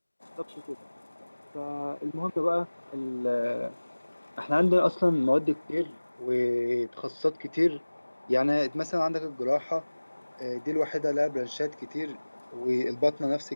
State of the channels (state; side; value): inverted; both; correlation -1.00